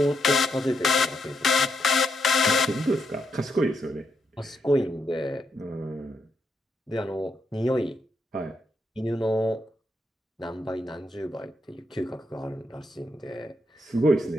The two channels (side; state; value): both; normal; correlation 0.79